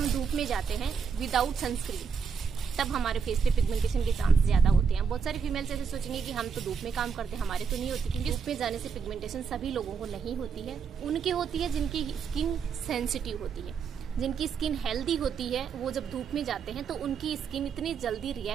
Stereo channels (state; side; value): quieter; left; 6.2 dB